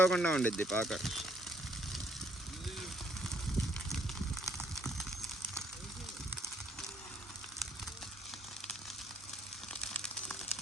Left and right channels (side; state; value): both; normal; correlation 0.67